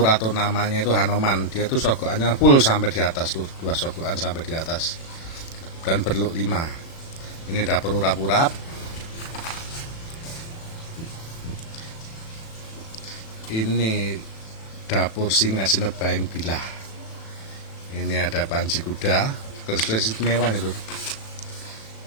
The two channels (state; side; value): late; right; 36 ms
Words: atau namanya itu Hanoman. Dia tuh sogokannya full sampai di atas lur, 2 sogokan sampai di atas, dan berlok 5. Ini dapur urap-urap. Ini dapur Singa Sinebaing Bilah. Ini ada Panji Kuda, keris istimewa nih lur.